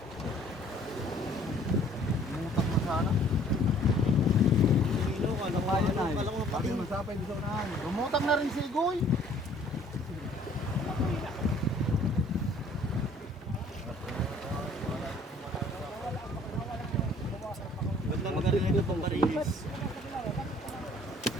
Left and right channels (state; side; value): normal; both; correlation 0.56